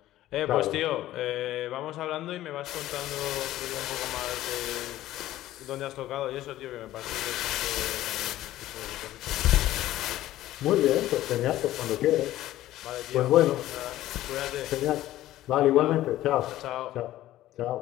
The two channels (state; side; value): quieter; right; 14.6 dB